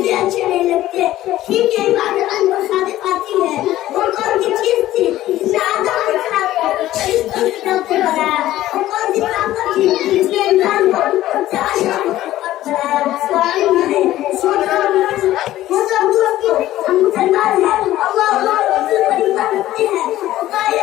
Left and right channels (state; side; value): quieter; right; 14.5 dB